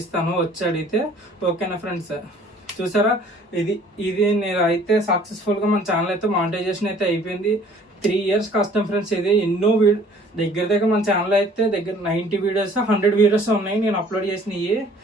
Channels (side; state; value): both; normal; correlation 0.54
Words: ఇస్తాను వచ్చి అడిగితే. ఓకేనా ఫ్రెండ్స్? చూసారా, ఇది నేను అయితే సక్సెస్ఫుల్గా మన ఛానల్ అయితే మానిటైజేషన్ అయితే అయిపోయింది. 3 years కష్టం ఫ్రెండ్స్. ఇది ఎన్నో దగ్గర మన ఛానల్ అయితే దగ్గర 90 వీడియోస్ 100 వీడియోస్ ఉన్నాయి నేను అప్లోడ్ చేసినవి.